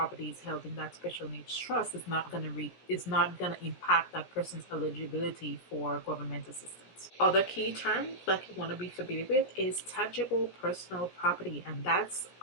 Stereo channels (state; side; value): late; right; 16 ms